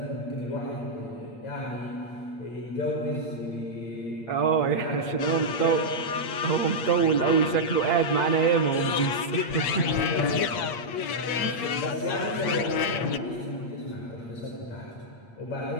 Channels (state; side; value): late; right; 8.6 ms